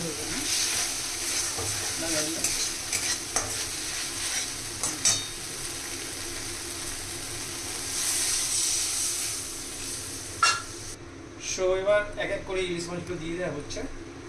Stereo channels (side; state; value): both; identical; correlation 1.00